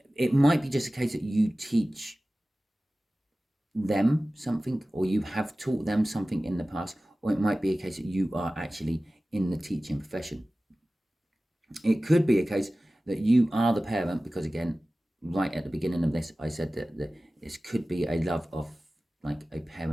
It might be just a case that you teach them something, or you have taught them something in the past, or it might be a case that you are actually in the teaching profession. It could be a case that you are the parent, because again, right at the beginning of this, I said that this could be a love of like a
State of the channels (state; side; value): normal; both; correlation 0.97